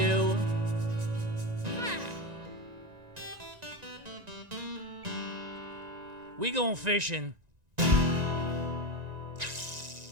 We going fishing.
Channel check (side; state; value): left; late; 1.9 ms